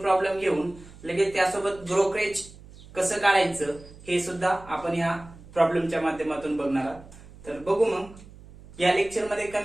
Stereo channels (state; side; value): noise; right; hum, 20 dB below the sound